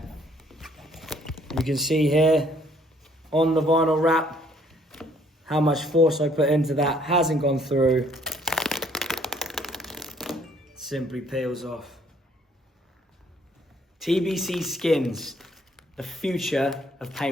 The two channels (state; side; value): normal; both; correlation 0.63